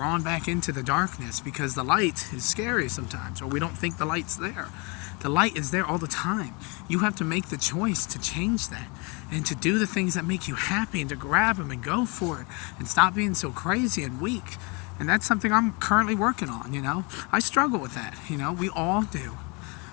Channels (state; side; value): quieter; right; 30.3 dB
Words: back into the darkness because the light is scary sometimes, or we don't think the light's there. The light is there all the time. You have to make the choice to change that and to do the things that make you happy and to grab them and go for it and stop being so crazy and weak. And that's something I'm currently working on, I struggle with that, we all do.